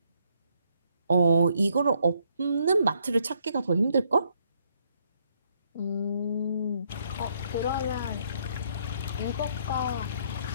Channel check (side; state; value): both; inverted; correlation -0.71